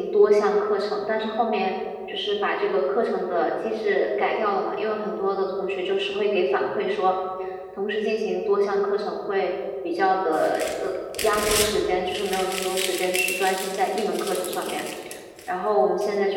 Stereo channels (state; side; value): identical; both; correlation 1.00